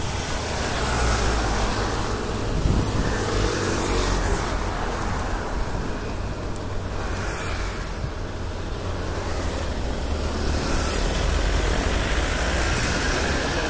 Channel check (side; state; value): both; identical; correlation 1.00